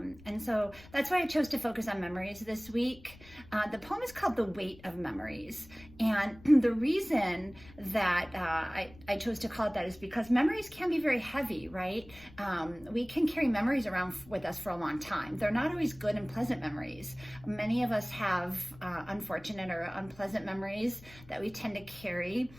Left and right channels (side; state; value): left; noise; rumble, 21 dB below the sound